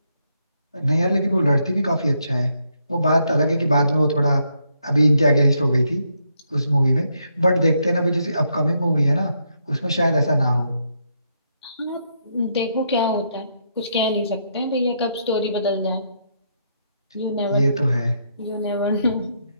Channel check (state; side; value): inverted; both; correlation -0.77